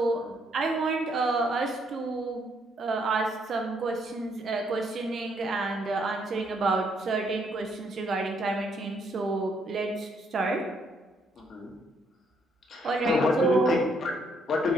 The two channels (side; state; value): both; normal; correlation 0.71